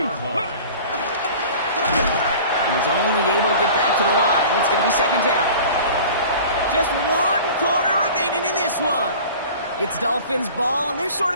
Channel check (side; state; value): both; inverted; correlation -0.42